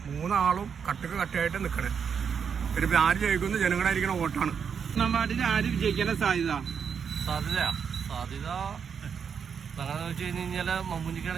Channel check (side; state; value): left; quieter; 6.9 dB